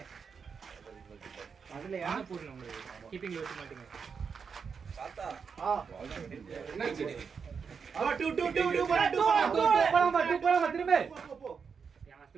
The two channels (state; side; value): quieter; left; 6.0 dB